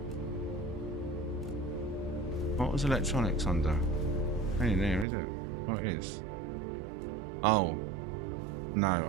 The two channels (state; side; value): drops out; left; at 5.1 s